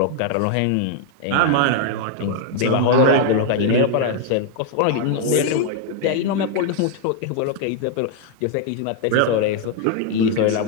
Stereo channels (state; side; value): different; both; correlation 0.00